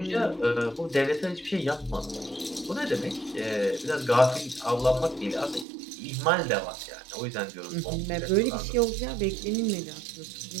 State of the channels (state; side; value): drops out; left; at 5.7 s